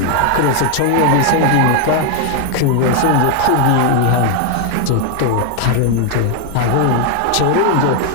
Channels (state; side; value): different; both; correlation 0.00